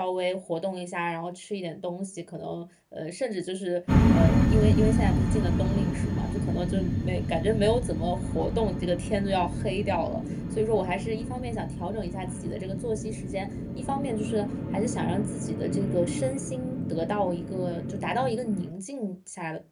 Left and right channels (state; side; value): identical; both; correlation 1.00